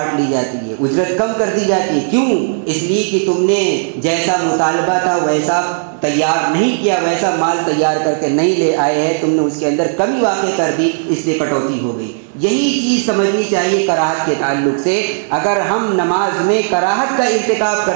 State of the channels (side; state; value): left; silent; digital silence